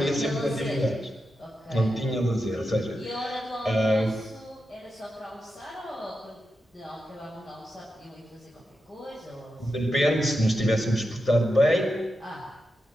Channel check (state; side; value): normal; both; correlation 0.88